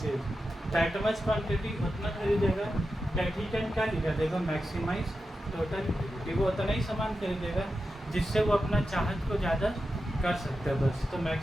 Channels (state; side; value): normal; both; correlation 0.90